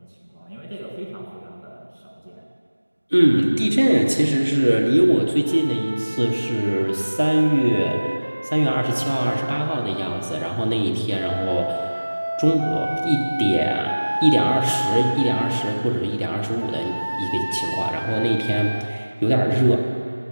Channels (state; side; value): inverted; both; correlation -1.00